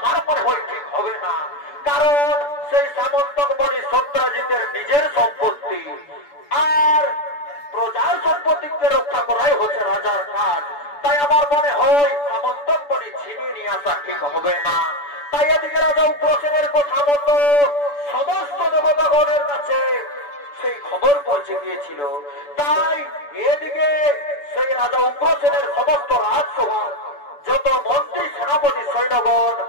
মনে হয় ঠিক হবে না, কারণ সেই সামন্তক মণি সত্রাজিতের নিজের সম্পত্তি, আর প্রজার সম্পত্তিকে রক্ষা করাই হচ্ছে রাজার কাজ। তাই আমার মনে হয় সামন্তক মণি ছিনিয়ে নিয়ে আসা ঠিক হবে না। তাই এদিকে রাজা উগ্রসেনের কথা মতো সমস্ত দেবতাগণের কাছে সেই খবর পৌঁছে গিয়েছিল। তাই এদিকে সেই রাজা উগ্রসেনের সমস্ত রাজসভার যত মন্ত্রী সেনাপতি সৈন্যগণ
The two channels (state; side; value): late; right; 6.9 ms